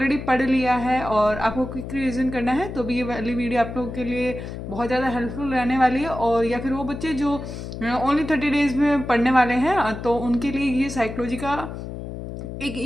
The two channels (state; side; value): noise; left; hum, 8 dB below the sound